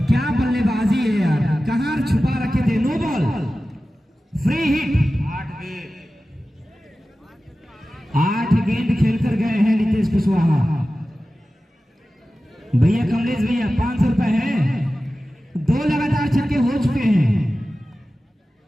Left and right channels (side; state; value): both; normal; correlation 0.95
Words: क्या बल्लेबाजी है यार, कहां छुपा रखे थे। No ball, free hit. 8 गेंद खेलकर गए हैं नीतीश कुशवाहा। भैया कमलेश भैया 500 रुपए है, 2 लगातार छक्के हो चुके हैं।